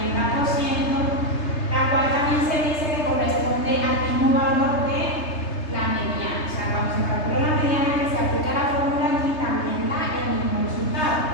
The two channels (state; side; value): late; right; 3.3 ms